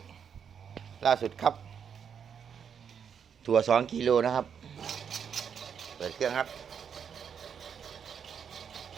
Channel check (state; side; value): quieter; left; 7.4 dB